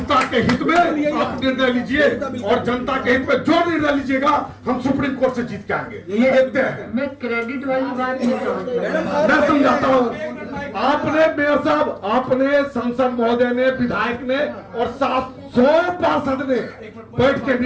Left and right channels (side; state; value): both; identical; correlation 1.00